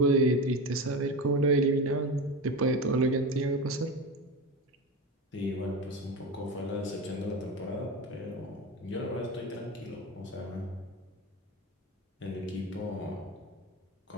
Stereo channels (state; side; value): normal; both; correlation 0.23